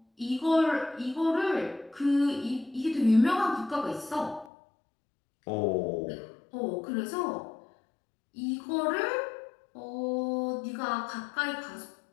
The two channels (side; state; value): right; drops out; at 4.5 s